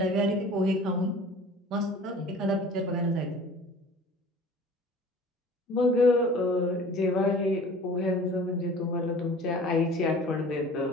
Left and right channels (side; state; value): both; normal; correlation 0.45